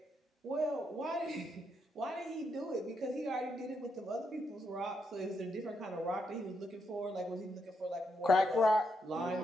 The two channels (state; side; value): normal; both; correlation 0.80